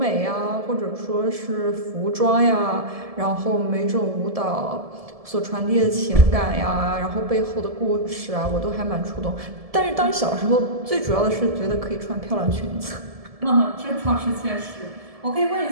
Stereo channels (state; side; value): late; left; 1.7 ms